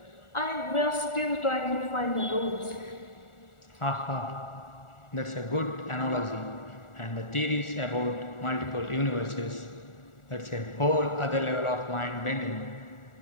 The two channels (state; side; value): late; right; 1.4 ms